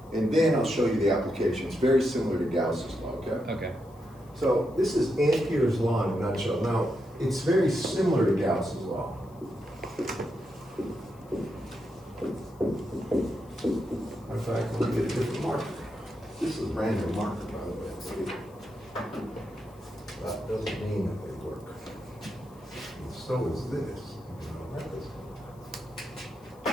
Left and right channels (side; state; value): left; noise; hiss, 29 dB below the sound